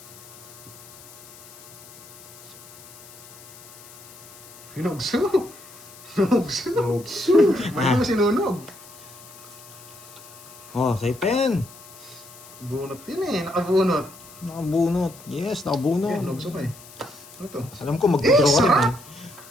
Hinugso! Hinugso! Nogso. Bakit mo sinunog? Oh, say pen. Bunot yun eh, nakabunot. Nakabunot. Yes, Yan, nakabunot. nugso pa eh. Ano to? Alam ko, mag-draw ka rin eh.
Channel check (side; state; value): left; noise; hiss, 19 dB below the sound